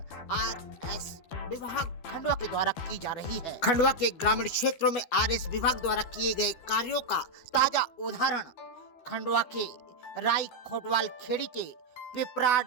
आरएस विभाग खंडवा के द्वारा की जा रही है। खंडवा के ग्रामीण क्षेत्रों में आरएस विभाग द्वारा किए गए कार्यों का ताजा उदाहरण खंडवा के राई खोटवाल खेड़ी के पिपराड़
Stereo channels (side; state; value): right; late; 12 ms